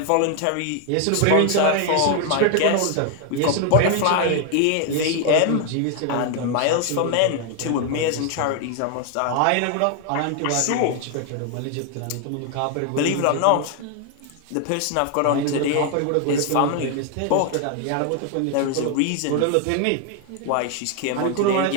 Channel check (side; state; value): both; different; correlation 0.00